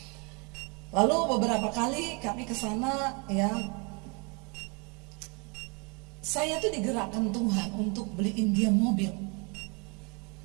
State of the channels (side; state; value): left; quieter; 32.5 dB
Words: Lalu beberapa kali kami ke sana ya, saya tuh digerakkan Tuhan untuk beliin dia mobil.